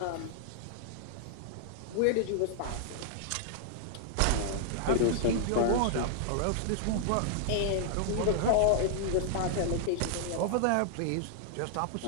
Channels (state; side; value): different; both; correlation -0.01